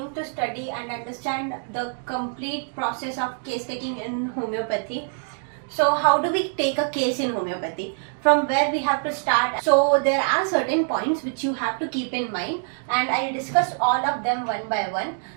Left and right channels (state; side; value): silent; left; 59 dB below the other